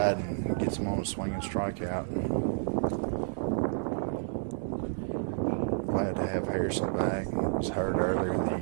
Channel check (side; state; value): left; silent; digital silence